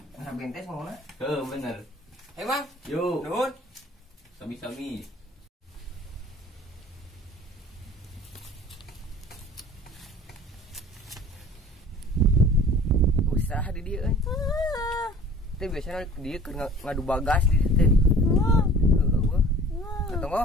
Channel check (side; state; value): both; normal; correlation 0.47